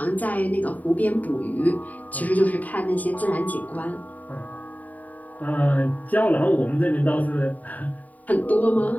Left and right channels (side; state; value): right; late; 0.075 ms